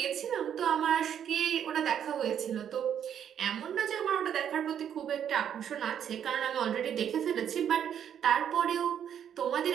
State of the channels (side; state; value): left; quieter; 9.1 dB